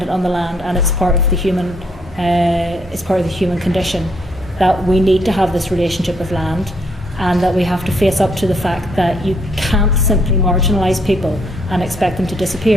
on the land, and it's part of the human condition that we need to have this relationship with land, and that we have to face up to the fact that you can't simply marginalise people and expect them to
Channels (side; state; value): both; normal; correlation 0.70